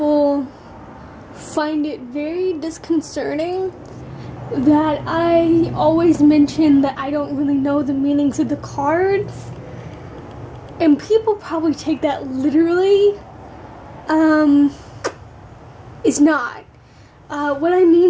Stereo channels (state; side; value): identical; both; correlation 1.00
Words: find it very disconcerting that I always mention that I don't really know the meanings of the cards, and people probably take that literally. It's not. What I